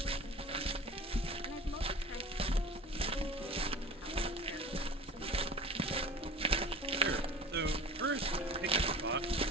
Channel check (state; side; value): normal; both; correlation 0.39